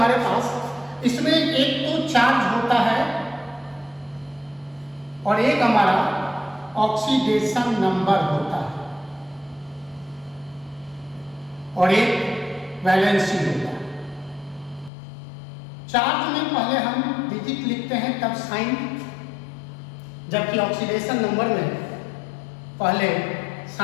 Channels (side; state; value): right; drops out; at 14.9 s